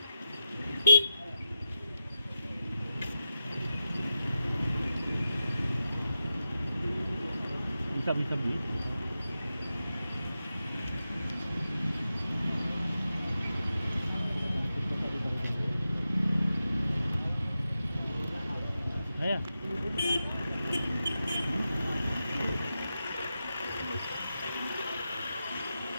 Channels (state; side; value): inverted; both; correlation -0.89